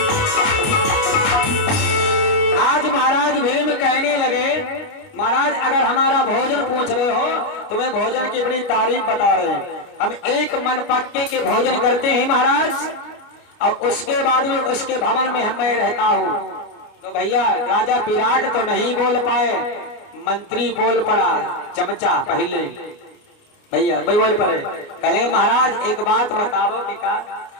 महाराज भीम कहने लगे, महाराज अगर हमारा भोजन पूछ रहे हो, तुम्हें भोजन की बड़ी तारीफ बता रहे हैं, हम एक मन पक्के के भोजन करते हैं महाराज, और उसके बाद में उसके भवन में मैं रहता हूँ। तो भैया राजा विराट तो नहीं बोल पाए, मंत्री बोल पड़ा, चमचा पहले भैया भाई बोल पड़े, कहेंगे महाराज एक बात बताओ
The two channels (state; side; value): late; right; 29 ms